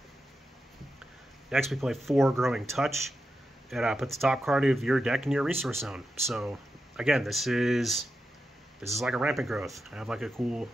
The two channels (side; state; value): both; normal; correlation 0.89